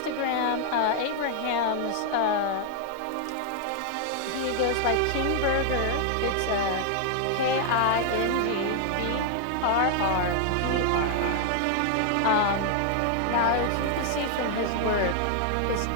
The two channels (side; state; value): both; different; correlation 0.00